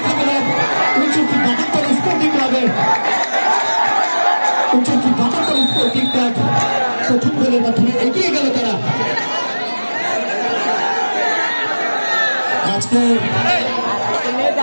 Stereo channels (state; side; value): inverted; both; correlation -1.00